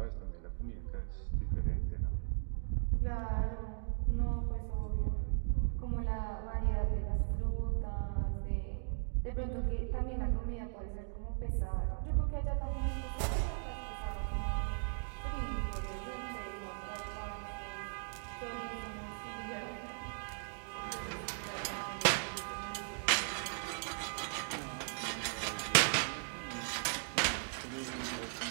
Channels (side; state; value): left; silent; digital silence